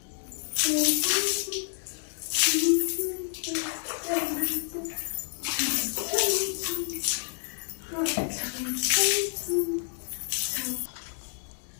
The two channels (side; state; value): right; silent; digital silence